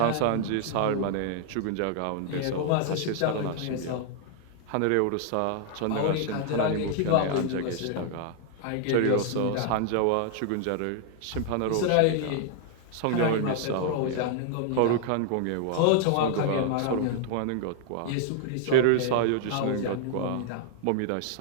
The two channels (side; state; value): both; different; correlation 0.00